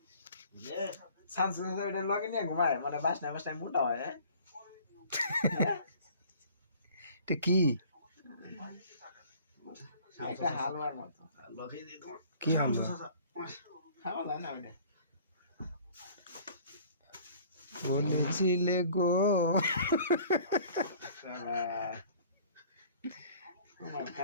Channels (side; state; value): both; inverted; correlation -0.51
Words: সানসেট ওটা লগে নিয়ে ঘুমায় মানে বাসনা মোটা হয় হ্যাঁ এটা কি একটা হালুয়ার মতো লগে দিয়ে তোমার কি হালুয়া খাওয়া যায় না ওটা বলেছিলে গো